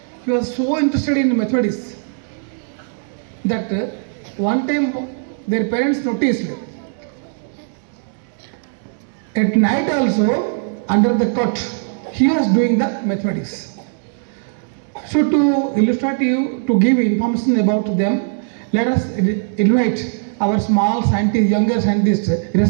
he was so interested in mathematics that one time their parents noticed at night also under the cot he was doing the mathematics. So to illustrate you, to give information about them, let us invite our small scientist, younger scientist,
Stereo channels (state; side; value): silent; left; 66 dB below the other